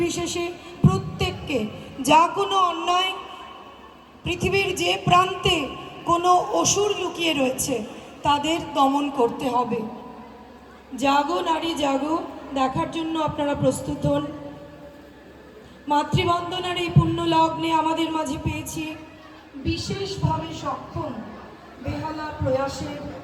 প্রত্যেককে যা কোনো অন্যায়, পৃথিবীর যে প্রান্তে কোনো অসুর লুকিয়ে রয়েছে তাদের দমন করতে হবে। জাগো নারী জাগো দেখার জন্য আপনারা প্রস্তুত হন। মাতৃবন্দনার এই পুণ্য লগ্নে আমাদের মাঝে পেয়েছি বিশেষভাবে সক্ষম বেহালা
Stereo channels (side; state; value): both; identical; correlation 1.00